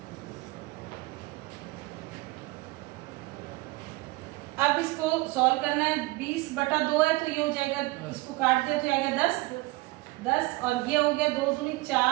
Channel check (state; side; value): quieter; left; 21.7 dB